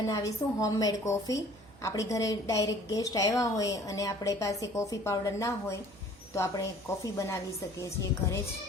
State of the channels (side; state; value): right; noise; hum, 24 dB below the sound